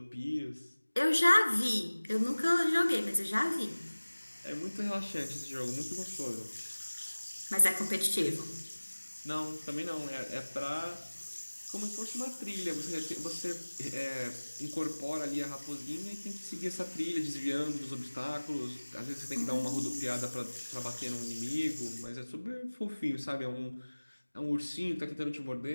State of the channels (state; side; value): inverted; both; correlation -1.00